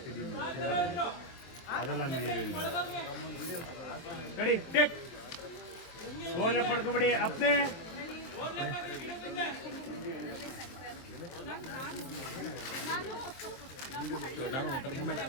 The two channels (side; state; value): right; late; 23 ms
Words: ಅದೆಲ್ಲ ರೆಡಿ ಟೆಕ್ ಓವರ್ಲ್ಯಾಪ್ ಮಾಡ್ಕೊಬೇಡಿ ಅಪ್ನೆ